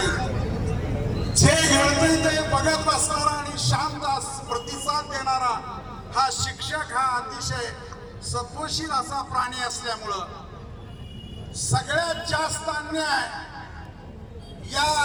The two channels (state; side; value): identical; both; correlation 1.00